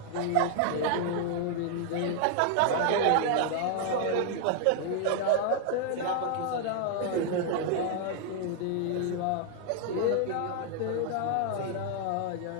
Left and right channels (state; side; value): different; both; correlation 0.00